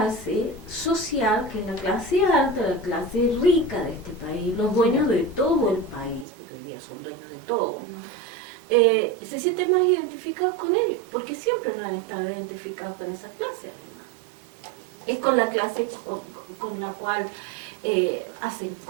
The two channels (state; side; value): drops out; left; at 6.2 s